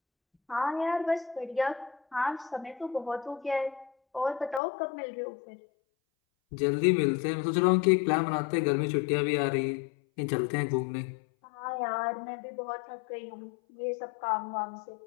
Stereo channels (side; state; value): right; drops out; at 4.6 s